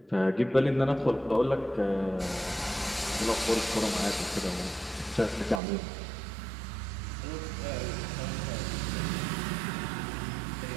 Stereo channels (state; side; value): drops out; left; at 5.6 s